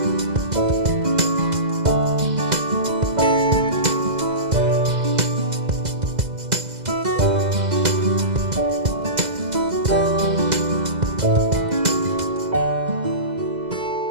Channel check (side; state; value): left; late; 2.0 ms